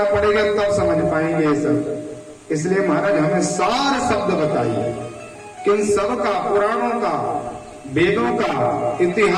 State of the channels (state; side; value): identical; both; correlation 1.00